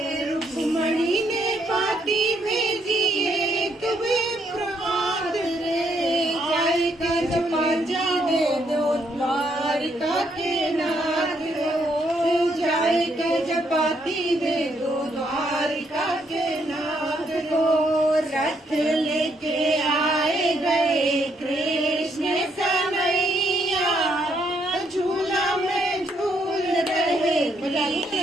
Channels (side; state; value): both; normal; correlation 0.73